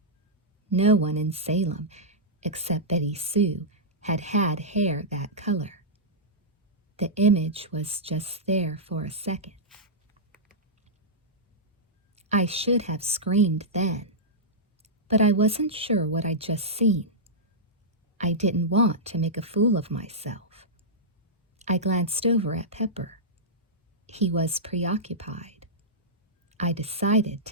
No one in Salem, except Betty Sue, had had hair that color. The image was just there for a second. I should have screamed then, but I wasn't sure what I'd just seen. I didn't want to make a fool of myself. I glanced over at Pepper. He was preoccupied. I decided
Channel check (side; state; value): both; normal; correlation -0.12